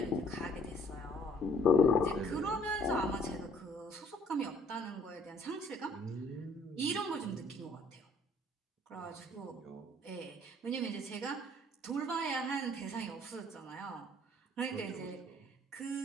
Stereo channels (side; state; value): both; normal; correlation 0.59